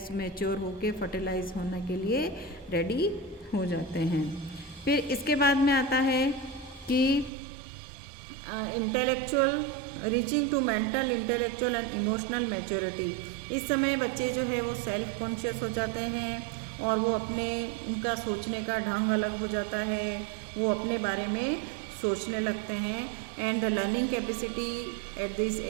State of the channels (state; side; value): drops out; left; at 7.3 s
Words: मैच्योर होके फर्टिलाइज होने के लिए रेडी हो जाते हैं। फिर इसके बाद में आता है कि intellectual reaching to mental, intellectual and emotional maturity. इस समय बच्चे जो है वो सेल्फ कॉन्शियस हो जाते हैं, और वो अपने उनका सोचने का ढंग अलग हो जाता है, वो अपने बारे में सोचने लगते हैं। And the learning capacity at this